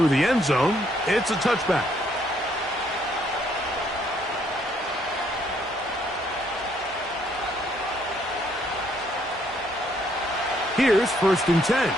the end zone. It's a touchback. Here's first and 10.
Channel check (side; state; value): both; normal; correlation 0.68